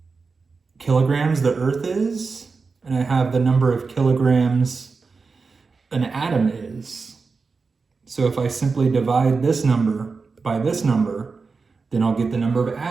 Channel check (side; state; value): left; quieter; 4.6 dB